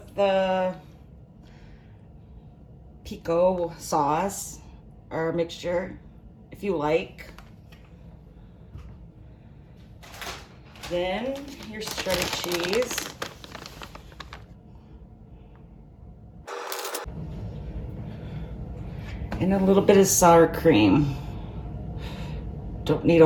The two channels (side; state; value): both; identical; correlation 1.00